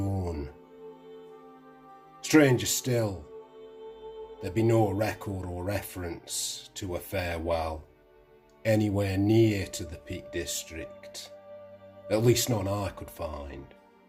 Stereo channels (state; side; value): identical; both; correlation 1.00